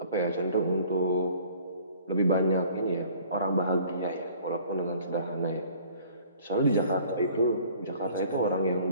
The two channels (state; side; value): inverted; both; correlation -0.52